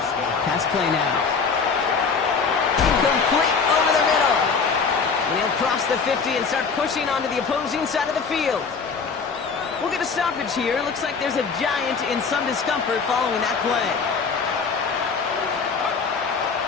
Pass play now. Complete over the middle. And he'll cross the 50 and start pushing onto the opposing side of the field. We'll get a stoppage here. Looks like there's a giant in some discomfort following that play.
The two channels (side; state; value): right; quieter; 5.3 dB